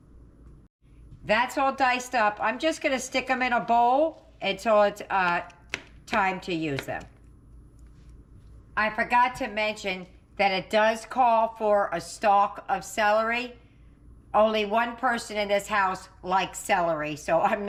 That's all diced up. I'm just going to stick them in a bowl until it's time to use them. I forgot to mention that it does call for a stalk of celery. Only one person in this house likes celery, so I'm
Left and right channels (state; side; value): identical; both; correlation 1.00